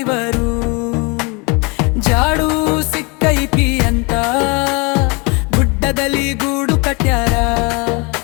ಜಾಡು ಸಿಕ್ಕೈತಿ ಅಂತ ಗುಡ್ಡದಲ್ಲಿ ಗೂಡು ಕಟ್ಯಾರ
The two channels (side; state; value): right; quieter; 29.5 dB